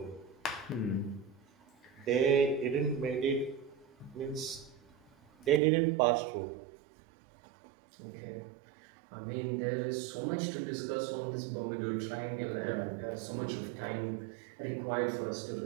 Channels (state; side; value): drops out; left; at 5.6 s